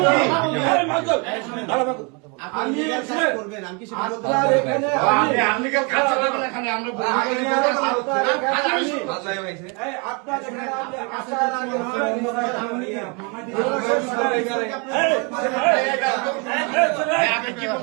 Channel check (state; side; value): quieter; left; 31.9 dB